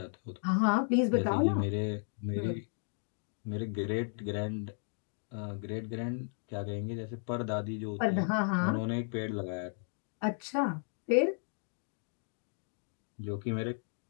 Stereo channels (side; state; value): right; silent; 55 dB below the other